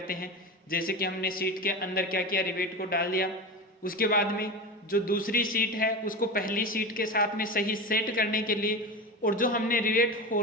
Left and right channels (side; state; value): both; normal; correlation 0.24